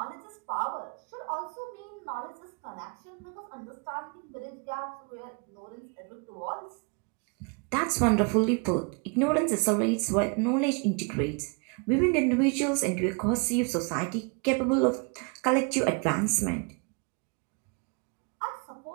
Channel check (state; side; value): quieter; left; 34.6 dB